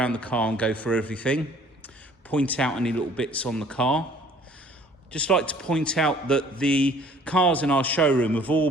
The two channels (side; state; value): both; normal; correlation 0.55